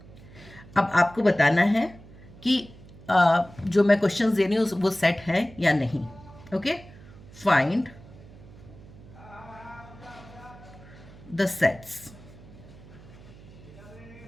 अब आपको बताना है कि जो मैं क्वेश्चंस दे रही हूँ वो सेट है या नहीं. Okay. Find the sets.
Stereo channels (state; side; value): noise; right; hum, 20 dB below the sound